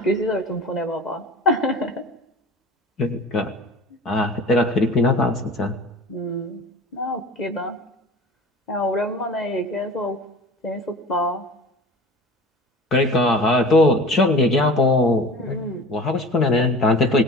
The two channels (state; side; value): normal; both; correlation 0.39